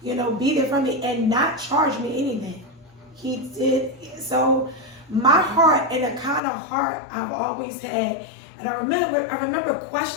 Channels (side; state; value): right; drops out; at 6.4 s